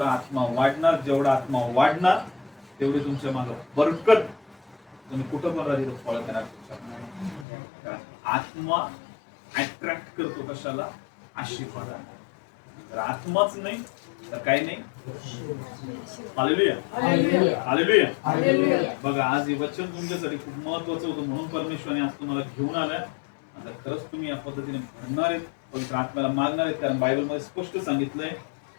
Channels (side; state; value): right; drops out; at 7.5 s